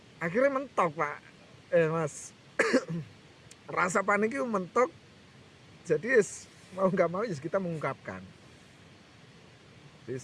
akhirnya mentok Pak, Mas. Rasa panik itu mentok. Jadi mau nggak mau kita mengungkapkan. Jadi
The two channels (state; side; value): identical; both; correlation 1.00